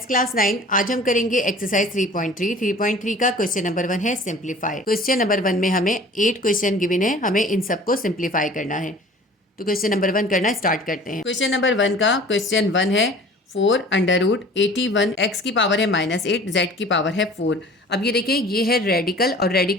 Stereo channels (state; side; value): normal; both; correlation 0.46